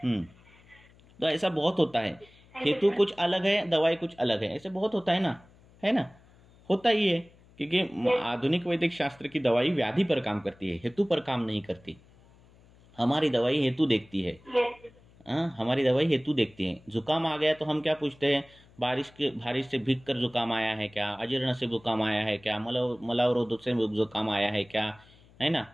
तो ऐसा बहुत होता है, हेतु कुछ अलग है, दवाई कुछ अलग है, ऐसे बहुत होता है ना, होता ही है। क्योंकि आधुनिक वैदिक शास्त्र की दवाई व्याधि पर काम करती है, हेतु पर काम नहीं करती। हमारी दवाई हेतु देखती है, हमारी दवाई हेतु देखती है। जुकाम आ गया तो हम क्या पूछते हैं, बारिश से भीग कर जुकाम आया है क्या, अजीर्ण से जुकाम आया है क्या, मलावरोध से जुकाम आया है क्या, है ना,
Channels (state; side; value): noise; left; hum, 27 dB below the sound